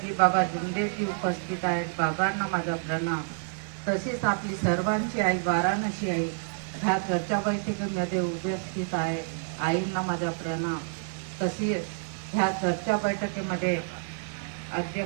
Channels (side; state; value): left; silent; digital silence